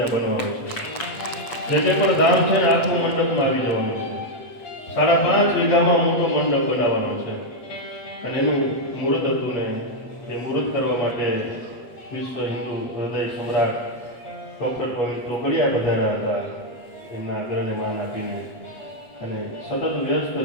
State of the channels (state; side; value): late; right; 8.2 ms